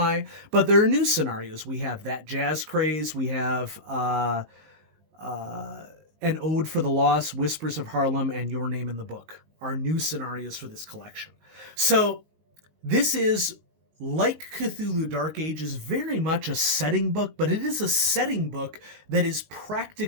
but there are new scenarios. We have That Jazz Craze, we have An Ode for the Lost, Whispers of Harlem, and Your Name in the Book are new scenarios for this collection. So this is, like Cthulhu Dark Ages, very much a setting book, but it is a setting book that is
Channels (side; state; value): left; late; 19 ms